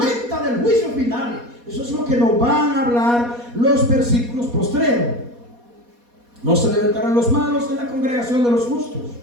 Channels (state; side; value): late; left; 4.2 ms